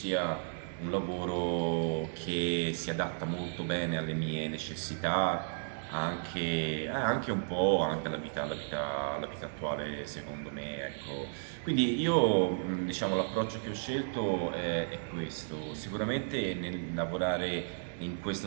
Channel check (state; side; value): silent; left; digital silence